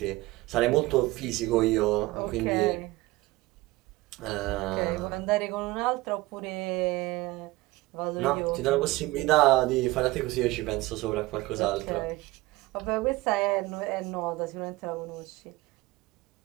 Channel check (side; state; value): left; quieter; 20.0 dB